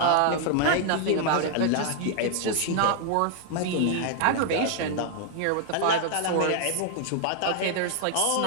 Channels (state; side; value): different; both; correlation 0.00